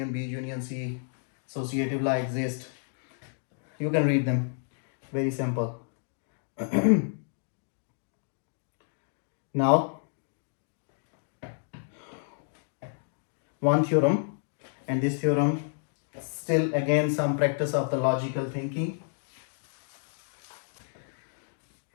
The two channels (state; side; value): silent; right; digital silence